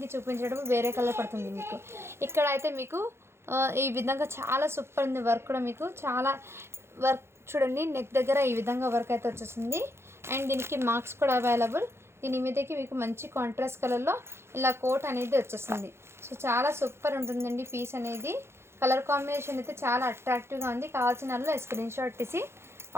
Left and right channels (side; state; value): left; late; 0.12 ms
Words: చూపించడం వేరే కలర్ పడుతుంది మీకు. ఇక్కడ అయితే మీకు ఈ విధంగా చాలా సూపర్ ఉంది వర్క్ కూడా. మీకు చాలా వర్క్ చూడండి, నెక్ దగ్గర ఈ విధంగా వర్క్ అయితే వచ్చేసింది. అండ్ దీనికి మార్క్స్ కూడా అవైలబుల్. దీని మీదకి మీకు మంచి కాంట్రాస్ట్ కలర్లో ఇలా కోట్ అనేది వచ్చేస్తుంది. సో చాలా సూపర్ ఉంటుందండి పీస్ అనేది. కలర్ కాంబినేషన్ అయితే చాలా అట్రాక్టివ్గా ఉంది. కావాల్సిన వాళ్ళు స్క్రీన్ షాట్ తీసి